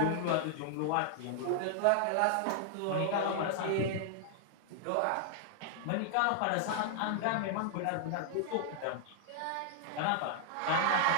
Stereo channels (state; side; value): different; both; correlation 0.00